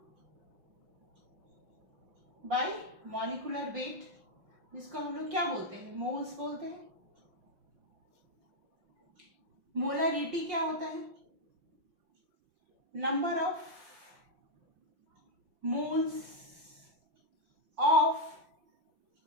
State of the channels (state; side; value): late; left; 5.7 ms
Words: by molecular weight, जिसको हम लोग क्या बोलते हैं? मोल्स बोलते हैं। मोलरिटी क्या होता है? Number of moles of